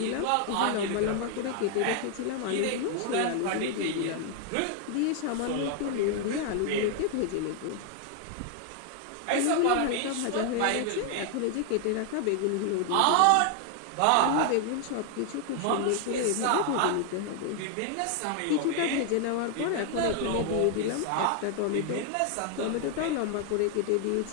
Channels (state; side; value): different; both; correlation 0.00